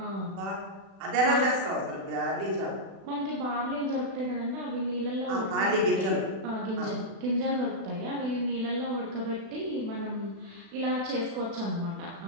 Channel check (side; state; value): left; late; 36 ms